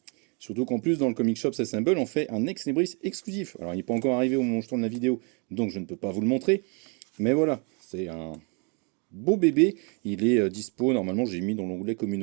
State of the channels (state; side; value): quieter; left; 34.3 dB